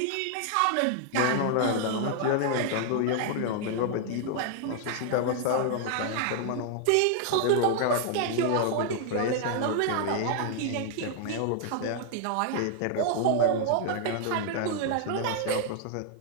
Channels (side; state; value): both; different; correlation 0.00